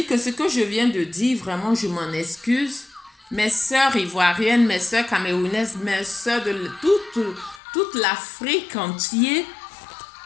que ce que je viens de dire, vraiment, je m'en excuse. Mes sœurs ivoiriennes, mes sœurs camerounaises, mes sœurs de toute l'Afrique entière,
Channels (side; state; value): right; drops out; at 7.6 s